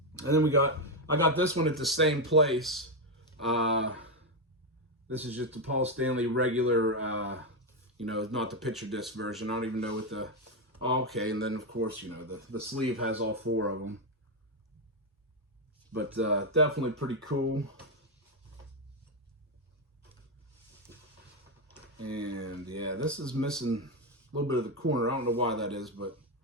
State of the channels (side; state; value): both; normal; correlation 0.05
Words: And then I got this one at the same place. This is just the Paul Stanley regular, you know, not the picture disc version. I don't even know what the... Oh, okay, and then, of course, you know, the sleeve has all 4 of them. But definitely pretty cool. And, yeah, this is missing a little bit of the corner. I don't know why that is, but